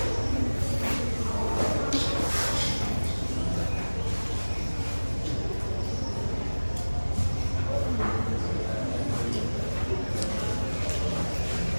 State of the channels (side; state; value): both; inverted; correlation -1.00